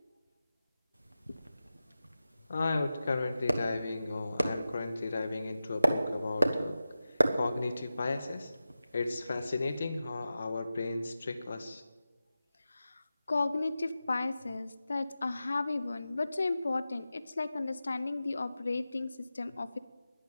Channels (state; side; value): inverted; both; correlation -0.94